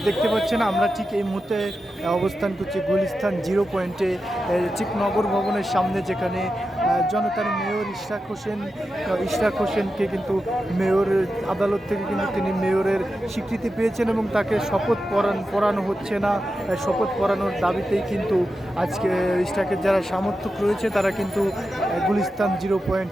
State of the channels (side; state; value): both; normal; correlation 0.90